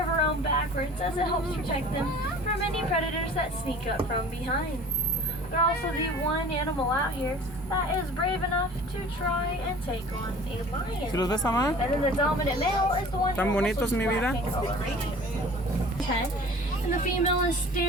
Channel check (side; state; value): both; normal; correlation 0.44